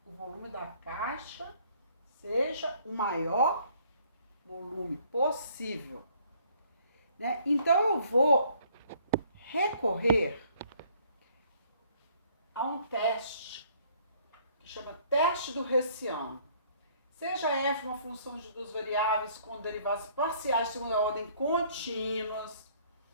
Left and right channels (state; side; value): inverted; both; correlation -0.61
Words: o volume da caixa seja o maior volume possível. Né? Então, eu vou recorrer a um teste que chama teste do Hessiano. Seja f uma função de duas variáveis com derivadas parciais de segunda ordem contínuas,